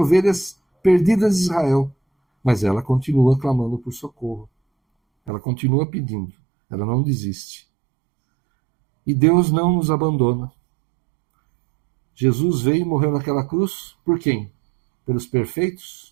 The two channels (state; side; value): drops out; left; at 5.3 s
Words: perdidas de Israel, mas ela continua clamando por socorro. Ela continua pedindo, ela não desiste. E Deus não nos abandona. Jesus veio e morreu naquela cruz por quem? Pelos